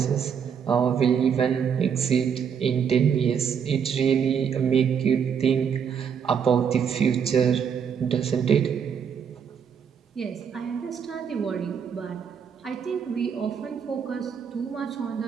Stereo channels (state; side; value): quieter; left; 7.3 dB